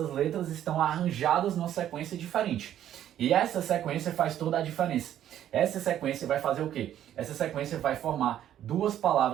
letras estão arranjadas numa sequência diferente. E essa sequência faz toda a diferença. Essa sequência vai fazer o quê? Essa sequência vai formar duas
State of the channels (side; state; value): left; quieter; 11.2 dB